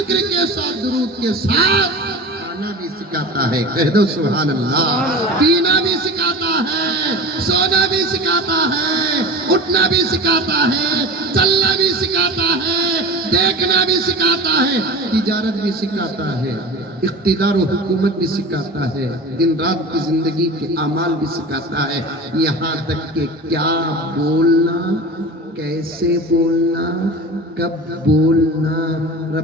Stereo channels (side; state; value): both; normal; correlation 0.33